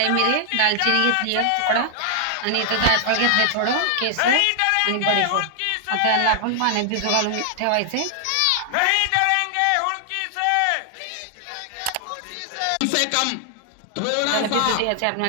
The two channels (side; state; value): both; different; correlation 0.00